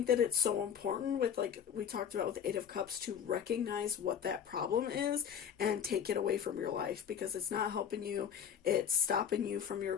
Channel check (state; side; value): quieter; right; 8.3 dB